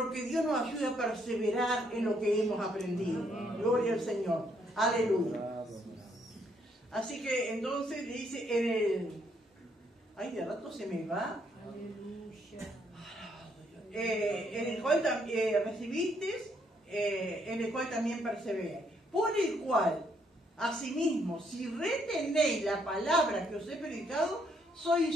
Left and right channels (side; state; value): both; normal; correlation 0.71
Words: que Dios nos ayude a perseverar en lo que hemos aprendido. Gloria al Señor. Aleluya. Así que entonces le dice, ay, de rato se me va. Aleluya. En el cual recibiste, en el cual también perseveráis. Por el cual, asimismo, si retenéis la palabra que os he predicado,